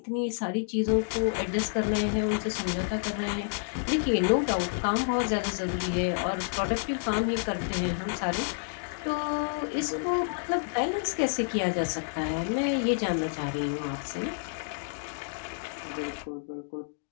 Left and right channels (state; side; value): silent; right; digital silence